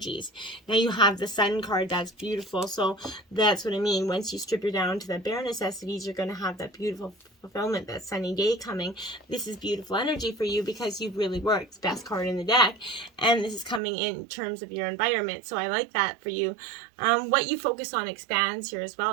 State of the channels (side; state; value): left; drops out; at 13.8 s